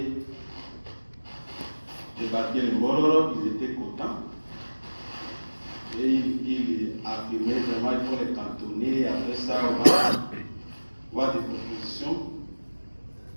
débarquer les Mororo, ils étaient contents. Et il affirmait vraiment qu'il faut les cantonner. Après ça, on va voir des propositions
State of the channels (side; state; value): both; inverted; correlation -1.00